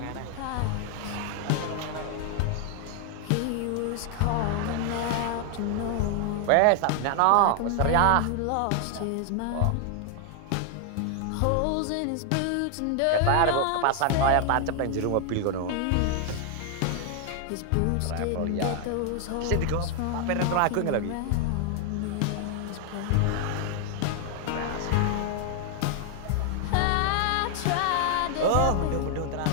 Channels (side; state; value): both; different; correlation 0.00